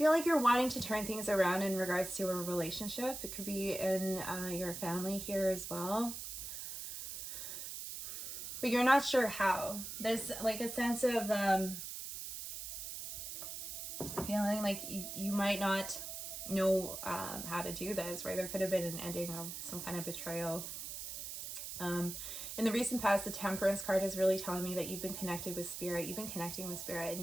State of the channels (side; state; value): right; noise; hiss, 7 dB below the sound